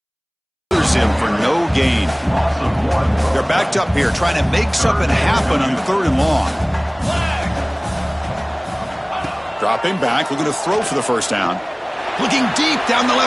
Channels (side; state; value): both; identical; correlation 1.00